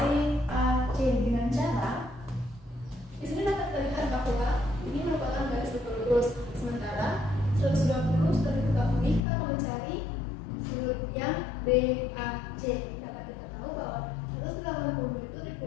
dengan cara di sini dapat terlihat bahwa ini merupakan garis lurus. Sementara 120 sudah diketahui, kita akan mencari sudut yang BAC. Dapat kita tahu bahwa 180 itu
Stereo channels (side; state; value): right; drops out; at 9.2 s